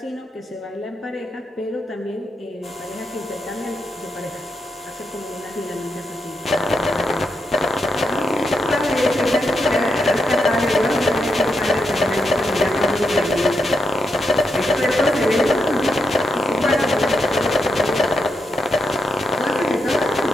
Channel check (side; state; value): both; normal; correlation 0.83